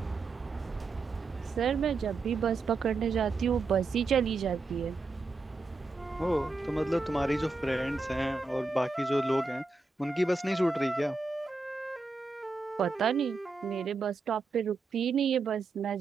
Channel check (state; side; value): quieter; left; 3.8 dB